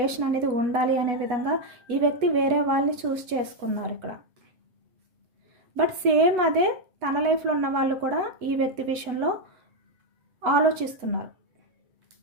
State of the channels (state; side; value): late; left; 8.2 ms